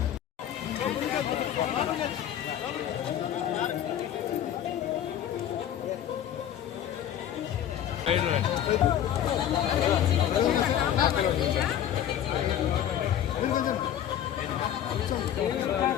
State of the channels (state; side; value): quieter; right; 10.6 dB